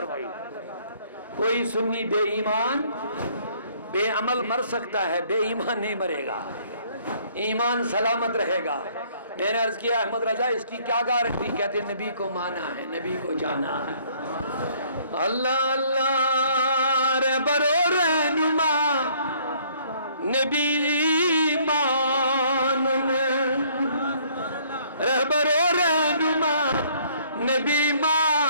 کوئی سنی بے ایمان بے عمل مر سکتا ہے بے ایمان نہیں مرے گا ایمان سلامت رہے گا میں نے عرض کیا احمد رضا اس کی کیا گارنٹی کہتے ہیں نبی کو مانا ہے نبی کو جانا ہے اللہ اللہ رہبر و رہنما نبی مانن رہبر و رہنما نبی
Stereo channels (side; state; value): both; inverted; correlation -0.61